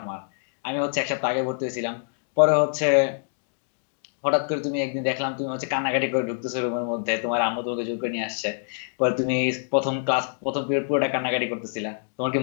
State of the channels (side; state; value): right; silent; digital silence